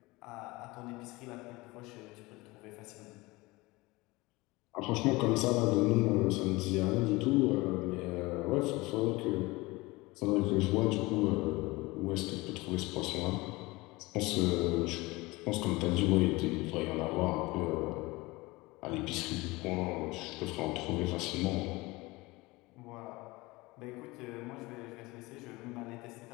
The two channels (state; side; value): quieter; right; 22.2 dB